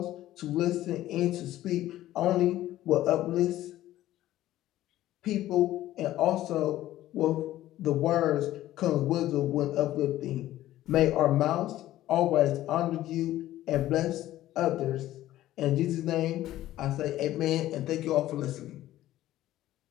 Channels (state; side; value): quieter; right; 14.4 dB